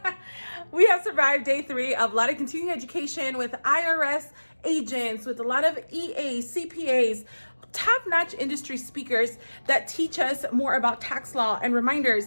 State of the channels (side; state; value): both; inverted; correlation -1.00